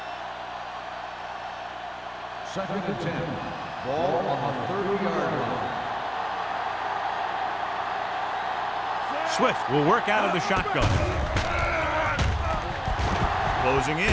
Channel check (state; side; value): identical; both; correlation 1.00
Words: Second and 10. Ball on the 30-yard line. Swift will work out of the shotgun. Closing